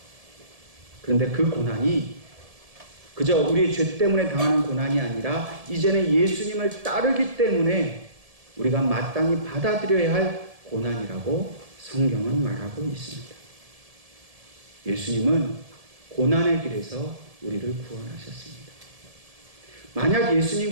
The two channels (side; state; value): left; late; 1.7 ms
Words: 그런데 그 고난이 그저 우리의 죄 때문에 당하는 고난이 아니라 이제는 예수님을 따르기 때문에 우리가 마땅히 받아들여야 할 고난이라고 성경은 말하고 있습니다. 예수님은 고난의 길에서 우리를 구원하셨습니다. 만약